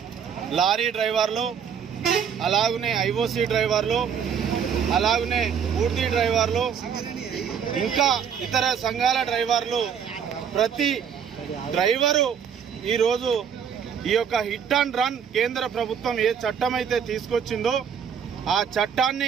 లారీ డ్రైవర్లు, అలాగనే ఐఓసీ డ్రైవర్లు, అలాగనే పూర్తి డ్రైవర్లు, ఇంకా ఇతర సంఘాల డ్రైవర్లు, ప్రతి డ్రైవరు ఈరోజు ఈ యొక్క హిట్ అండ్ రన్ కేంద్ర ప్రభుత్వం ఏ చట్టం అయితే తీసుకొచ్చిందో ఆ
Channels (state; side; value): quieter; left; 7.6 dB